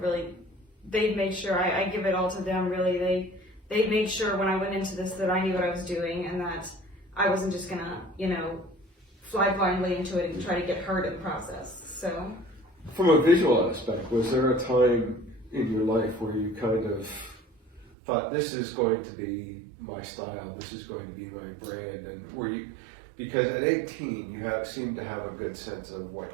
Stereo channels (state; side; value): drops out; left; at 17.9 s